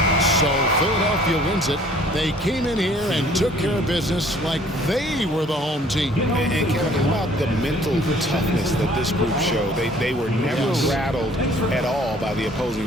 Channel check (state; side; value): normal; both; correlation 0.56